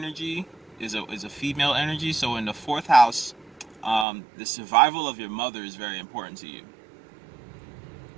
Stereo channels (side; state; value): left; drops out; at 4.0 s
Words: is a female energy. So in the fourth house, the survival of your mother is very important to you.